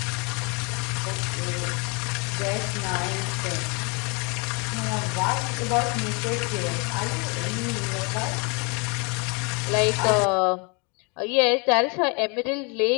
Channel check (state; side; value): quieter; right; 32.0 dB